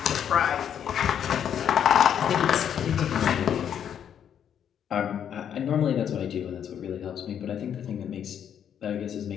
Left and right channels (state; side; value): quieter; right; 8.9 dB